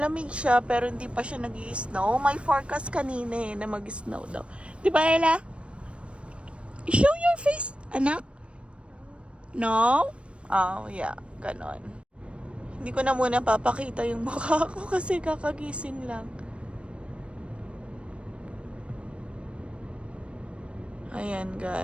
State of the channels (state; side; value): late; left; 0.060 ms